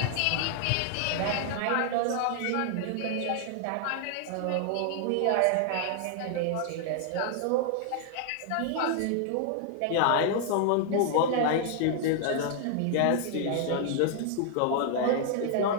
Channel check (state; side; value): different; both; correlation -0.01